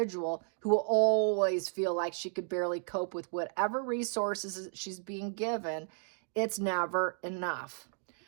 who will always feel like she could barely cope with whatever resources she's being given. It's never enough.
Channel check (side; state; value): left; silent; 55 dB below the other